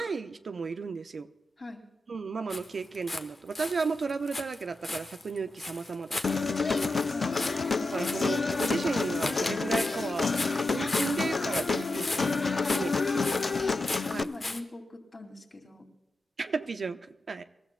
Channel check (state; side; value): normal; both; correlation 0.89